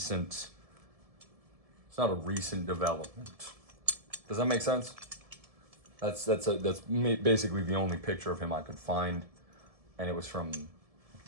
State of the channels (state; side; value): late; left; 1.7 ms